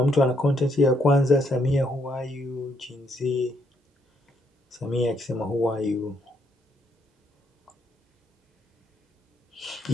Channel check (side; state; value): both; normal; correlation 0.73